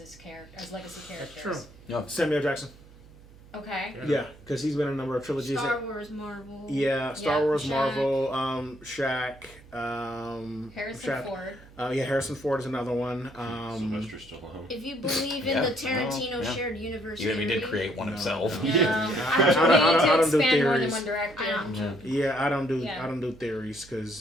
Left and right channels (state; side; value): noise; right; hum, 22 dB below the sound